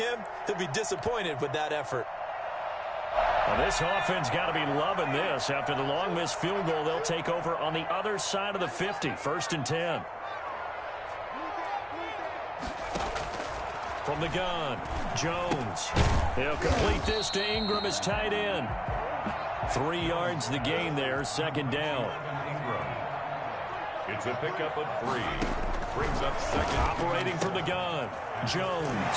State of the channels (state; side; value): identical; both; correlation 1.00